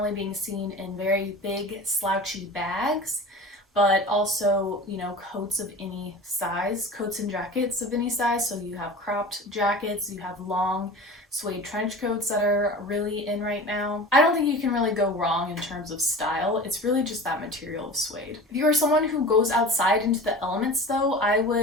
being seen in very big, slouchy bags, but also, coats of any size, coats and jackets of any size. So you have cropped jackets, you have long suede trench coats that are really in right now. I don't think you can really go wrong in terms of style. It's really just that material of suede. If you are someone who goes outside into the elements though, I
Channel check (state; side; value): normal; both; correlation 0.35